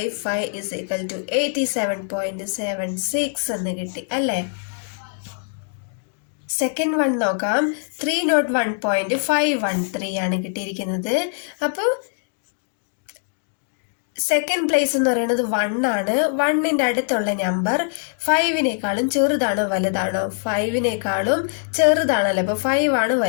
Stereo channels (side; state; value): right; silent; 64 dB below the other